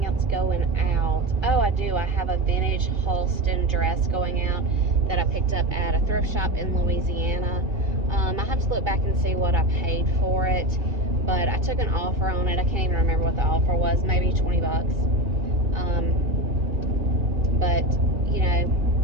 else going out. Oh, I do. I have a vintage Halston dress going out that I picked up at a thrift shop in Louisiana. I have to look back and see what I paid for it, but I took an offer on it. I can't even remember what the offer was, maybe $20. But, you know,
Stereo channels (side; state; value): left; late; 2.7 ms